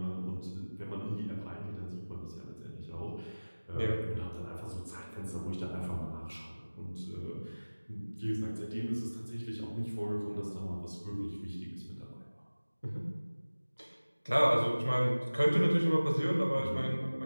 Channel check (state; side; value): inverted; both; correlation -1.00